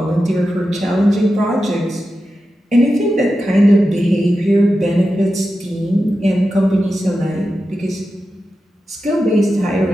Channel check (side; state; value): both; normal; correlation 0.91